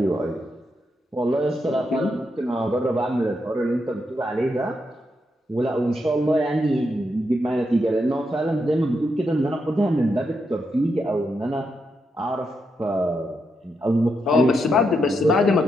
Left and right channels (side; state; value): both; normal; correlation 0.82